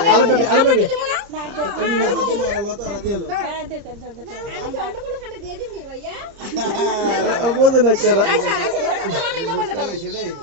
আলো বেবি লতা আর দিও হ্যাঁ দে আমি অন্য কোনো খানে দিয়ে দিবি ভাইয়া বুঝে না কেরা আমি মোবাইলটা দাও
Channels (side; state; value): left; late; 30 ms